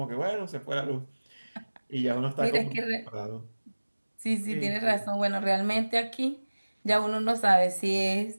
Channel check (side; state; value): both; inverted; correlation -1.00